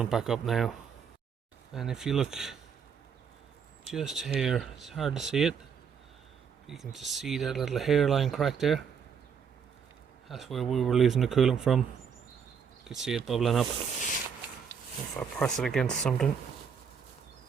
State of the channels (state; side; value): quieter; left; 6.8 dB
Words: back up now. And if you look just here, it's hard to see it, but you can just see that little hairline crack there. That's where we were losing the coolant from. You can see it bubbling up. If I press it against something,